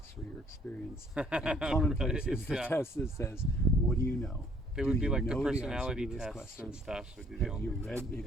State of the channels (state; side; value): normal; both; correlation 0.62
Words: for your experience. And commonplace is the test that says, what do you know? They would be like the personality tests and stuff. Have you